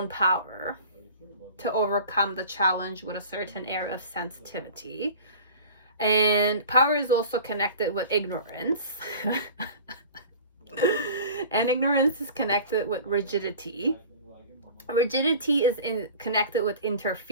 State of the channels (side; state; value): both; inverted; correlation -0.40